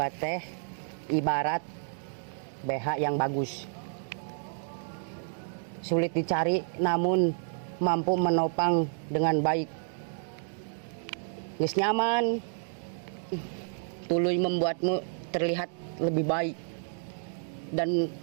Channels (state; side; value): silent; left; digital silence